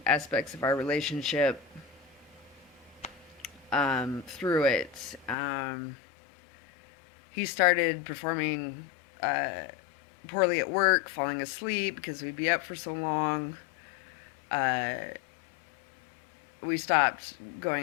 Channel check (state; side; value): drops out; right; at 5.4 s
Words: aspects of our relationship through it. He started performing poorly at work, falling asleep because we'd be up for so long. We stopped